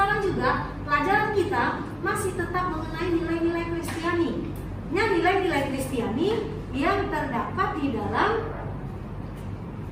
juga pelajaran kita masih tetap mengenai nilai-nilai Kristiani. Nah, nilai-nilai Kristiani yang terdapat di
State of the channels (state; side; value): identical; both; correlation 1.00